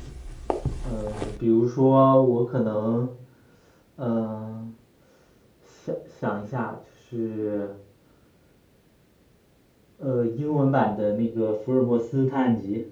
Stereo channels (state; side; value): identical; both; correlation 1.00